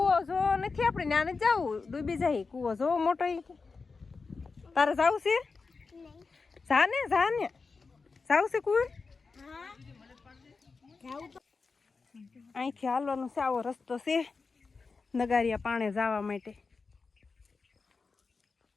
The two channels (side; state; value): right; quieter; 4.5 dB